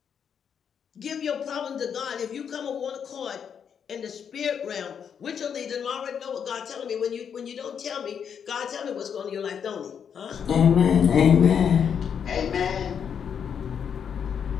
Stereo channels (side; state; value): right; quieter; 7.6 dB